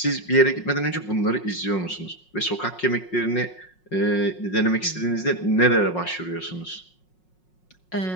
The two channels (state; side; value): late; right; 5.5 ms